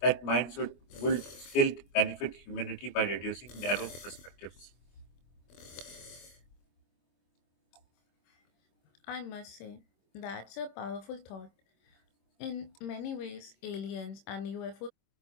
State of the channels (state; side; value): late; right; 25 ms